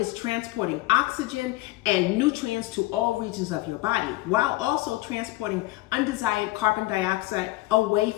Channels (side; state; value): right; quieter; 19.2 dB